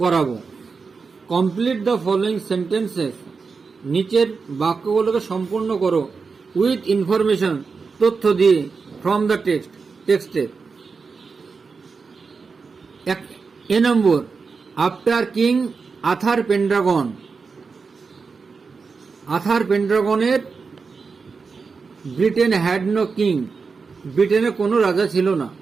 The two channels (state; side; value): quieter; left; 4.9 dB